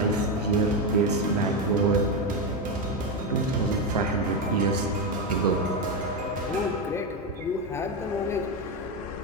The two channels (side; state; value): both; normal; correlation 0.10